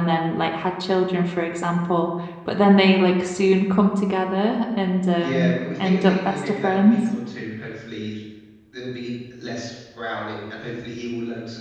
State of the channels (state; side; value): identical; both; correlation 1.00